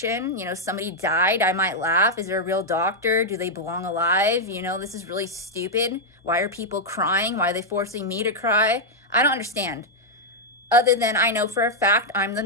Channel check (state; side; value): normal; both; correlation -0.03